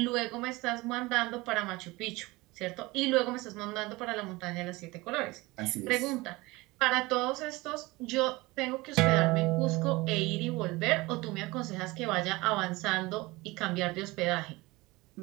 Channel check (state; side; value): quieter; left; 22.0 dB